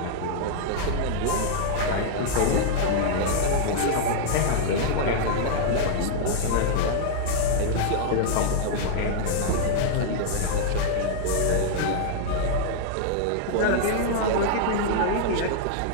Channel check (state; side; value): different; both; correlation -0.01